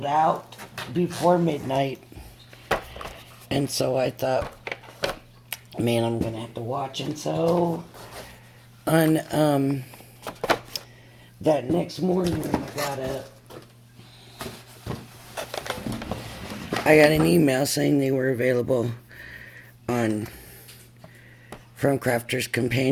out before midnight. And so I thought, man, I'm gonna have to watch. And so on that next morning when I got an email saying they were available on from Crafter's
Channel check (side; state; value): both; identical; correlation 1.00